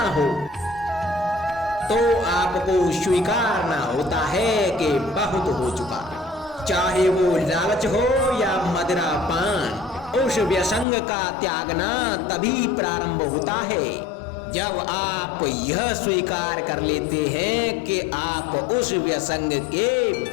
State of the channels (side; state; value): right; drops out; at 10.9 s